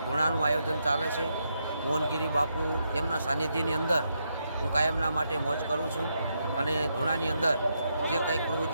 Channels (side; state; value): both; inverted; correlation -0.81